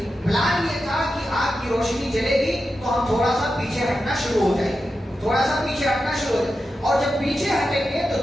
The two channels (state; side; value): normal; both; correlation 0.90